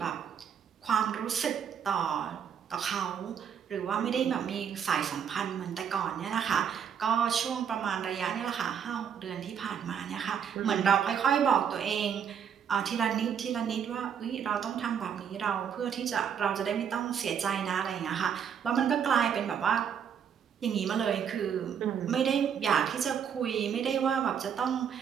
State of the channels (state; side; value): quieter; left; 7.9 dB